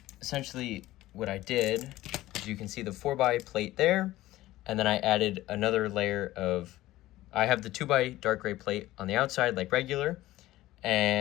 Essentially, what I did is you can see the 4x plate there, and then I added another layer of, I have the 2x dark gray plate on the outside like regular,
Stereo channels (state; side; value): quieter; right; 16.3 dB